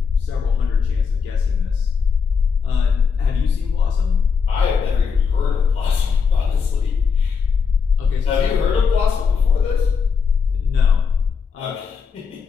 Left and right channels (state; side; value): quieter; right; 5.9 dB